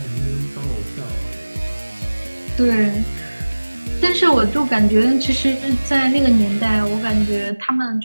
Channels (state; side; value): inverted; both; correlation -1.00